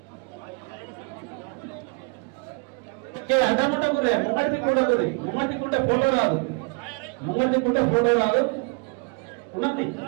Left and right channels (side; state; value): left; quieter; 33.0 dB